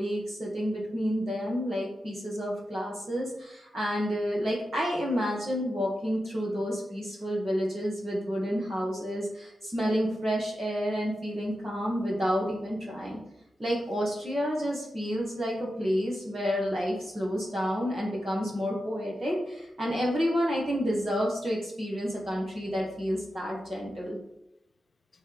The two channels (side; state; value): both; normal; correlation 0.90